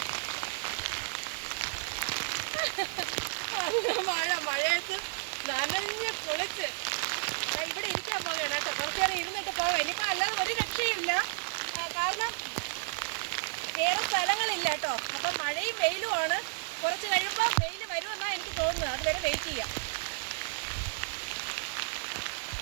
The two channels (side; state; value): left; silent; digital silence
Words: മഴയത്ത് നനഞ്ഞ് പൊളിച്ച് ഇവിടെ ഇരിക്കാൻ പോവുകയാണ് കേട്ടോ. കുറച്ച് നേരം ഇരുന്നിട്ട് പോകാം. ഇനിയിപ്പോൾ അല്ലാതെ ഒരു രക്ഷയില്ല, കാരണം വേറെ സ്ഥലങ്ങളില്ല കേട്ടോ. അപ്പം മഴയും വെയിലുമാണ്. കുറച്ച് കഴിയുമ്പോൾ വെയിൽ വരുമെന്നാണ് എനിക്ക് തോന്നുന്നത്. അതുവരെ വെയിറ്റ് ചെയ്യാം.